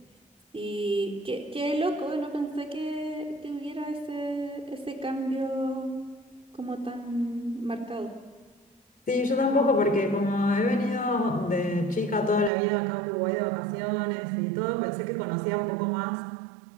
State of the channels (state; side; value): drops out; left; at 12.5 s